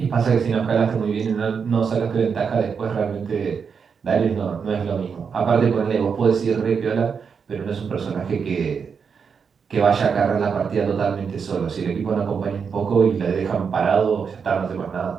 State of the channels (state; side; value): quieter; left; 6.2 dB